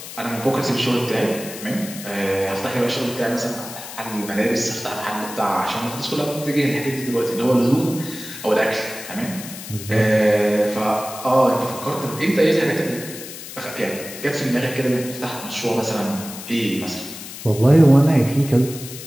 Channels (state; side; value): noise; left; hiss, 12 dB below the sound